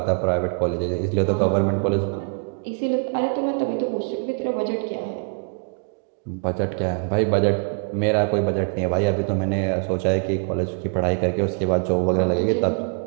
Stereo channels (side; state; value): left; quieter; 39.2 dB